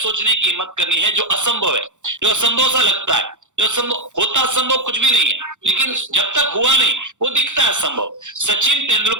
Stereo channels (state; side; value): late; left; 0.85 ms